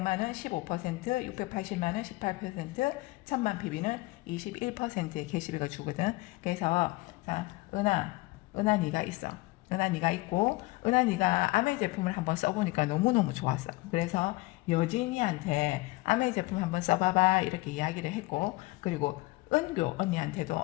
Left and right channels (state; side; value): quieter; right; 21.7 dB